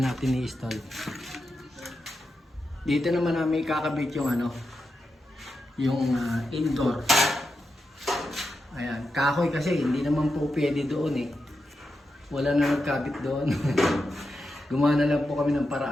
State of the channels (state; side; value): normal; both; correlation 0.88